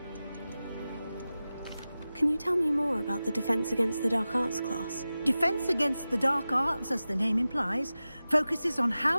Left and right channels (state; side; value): inverted; both; correlation -0.95